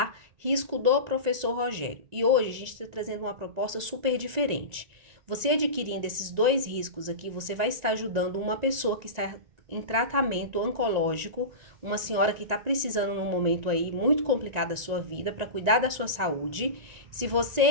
Risco do professor Rogério. E hoje a gente está trazendo uma proposta super diferente. Você adquirindo esses dois riscos aqui, você vai estar ajudando uma pessoa que está em tratamento oncológico, uma senhora que está precisando num momento aí muito complicado da sua vida para cuidar da sua saúde. Se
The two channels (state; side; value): late; left; 1.9 ms